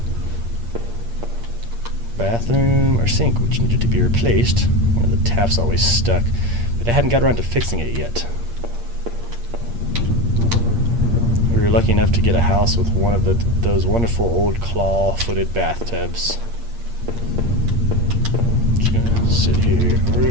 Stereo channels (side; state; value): left; late; 8.6 ms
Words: Bathroom or sink, which needed to be replaced. One of the taps always stuck, but I hadn't got around to fixing it yet. We were lucky enough to get a house with one of those wonderful old claw-footed bathtubs. Just gonna sit here.